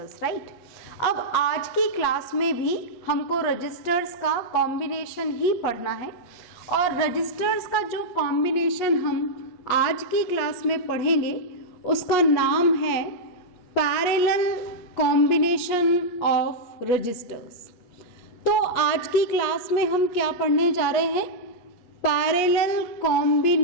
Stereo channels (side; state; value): right; late; 8.3 ms